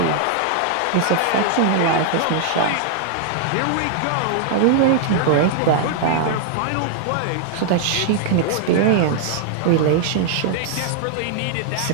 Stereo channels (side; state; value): both; different; correlation 0.00